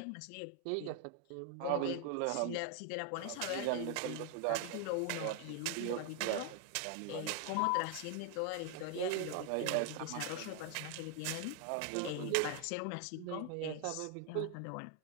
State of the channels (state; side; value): different; both; correlation 0.00